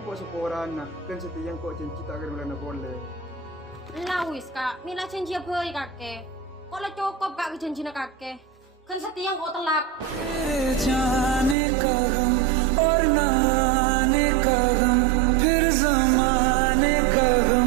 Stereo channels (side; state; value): left; drops out; at 11.6 s